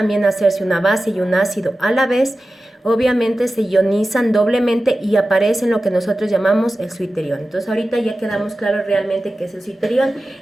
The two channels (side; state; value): both; normal; correlation 0.95